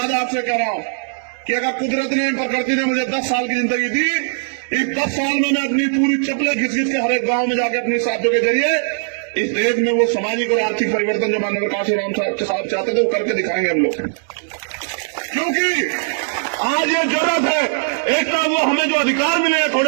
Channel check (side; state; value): left; silent; digital silence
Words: आपसे कह रहा हूं कि अगर कुदरत ने, प्रकृति ने मुझे 10 साल की जिंदगी दी, इस 10 साल में मैं अपनी पूरी चप्पलें घिस घिस के हर एक गांव में जाकर अपनी साथियों के जरिए इस देश में वो सामाजिक और आर्थिक परिवर्तन जो माननीय काशीराम साहब चाहते थे वो करके दिखाएंगे हम लोग। क्योंकि आज ये जरूरत है, एक तरफ वो हमें जो अधिकार मिले हैं